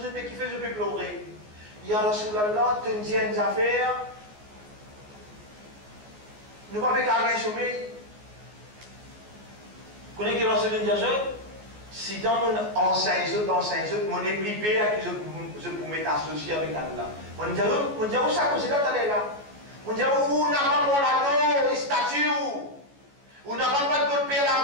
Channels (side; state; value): left; late; 14 ms